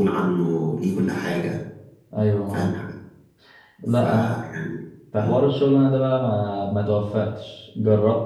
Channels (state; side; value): identical; both; correlation 1.00